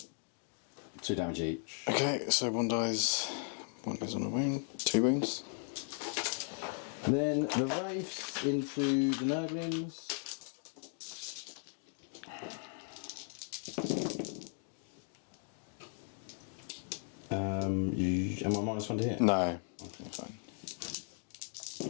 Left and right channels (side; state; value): right; silent; 53 dB below the other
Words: 2 damage each. Okay, so 1 dies. 1 goes on a wound. 2 wounds. Then the Wraiths into the Nurglings. Am I -1 to hit? No. Okay, fine.